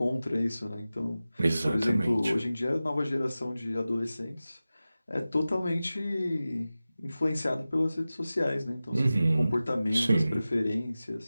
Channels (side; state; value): both; inverted; correlation -0.96